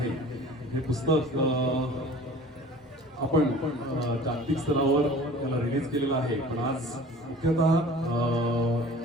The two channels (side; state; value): both; normal; correlation 0.44